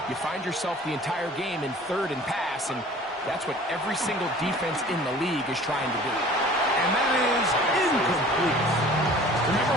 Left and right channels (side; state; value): both; normal; correlation 0.47